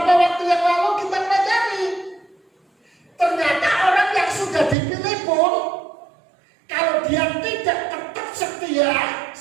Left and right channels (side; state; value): left; drops out; at 4.8 s